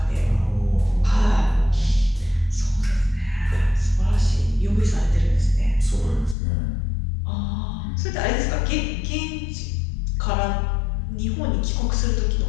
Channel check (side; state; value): right; drops out; at 6.4 s